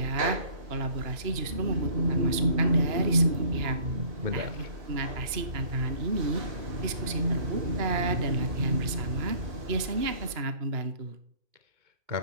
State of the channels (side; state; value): left; late; 2.9 ms